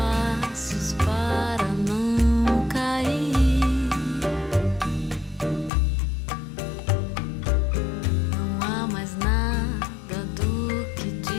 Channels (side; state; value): right; drops out; at 5.7 s